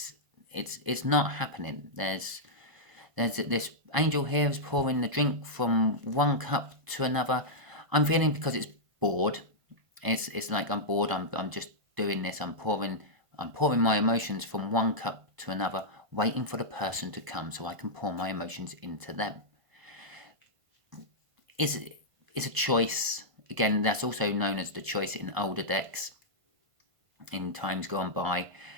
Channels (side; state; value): left; late; 1.5 ms